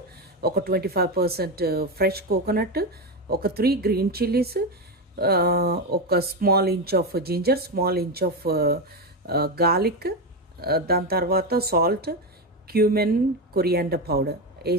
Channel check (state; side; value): normal; both; correlation 0.12